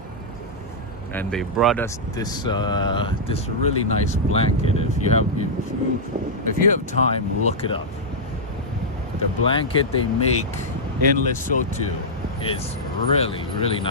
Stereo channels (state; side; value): normal; both; correlation -0.08